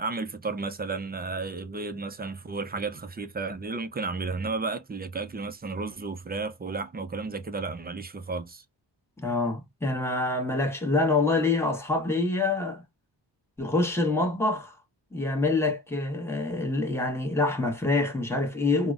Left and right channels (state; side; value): normal; both; correlation 0.38